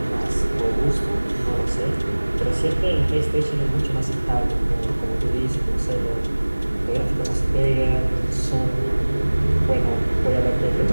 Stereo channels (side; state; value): both; inverted; correlation -1.00